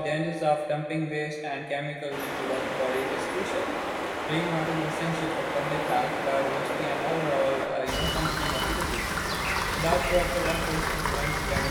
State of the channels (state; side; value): identical; both; correlation 1.00